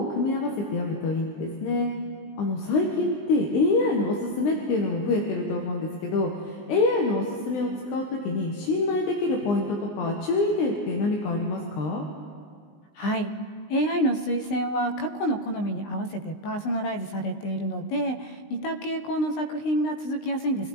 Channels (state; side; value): late; right; 19 ms